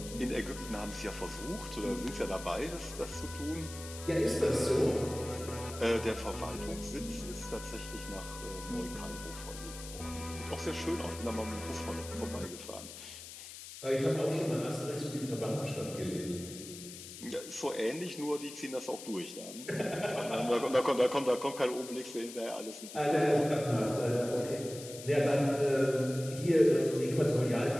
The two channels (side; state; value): left; noise; hiss, 13 dB below the sound